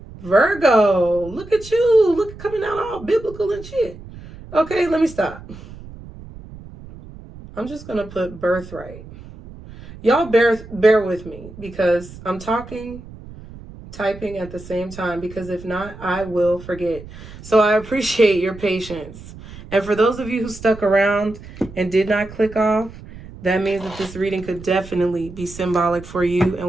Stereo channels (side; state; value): right; noise; rumble, 16 dB below the sound